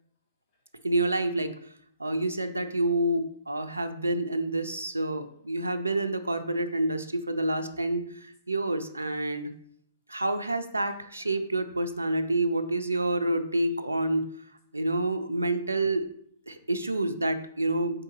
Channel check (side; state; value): both; inverted; correlation -0.79